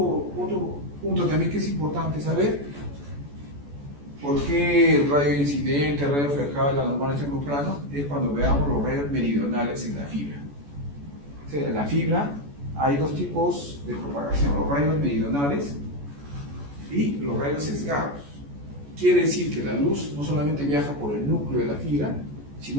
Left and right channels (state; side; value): late; left; 14 ms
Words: punto también que es importante saber, ¿por qué el rayo incidente, el rayo reflejado y la normal en el mismo plano? Es cuando veamos los rayos meridionales en la fibra. O sea, en la fibra hay dos tipos de propagación, los rayos meridionales y los rayos sesgados. Quiere decir que la luz no solamente viaja por el núcleo de la fibra,